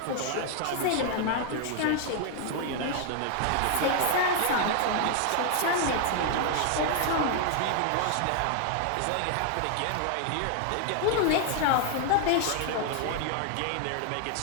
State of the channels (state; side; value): different; both; correlation 0.00